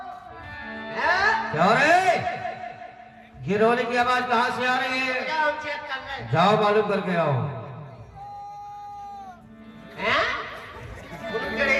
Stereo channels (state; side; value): identical; both; correlation 1.00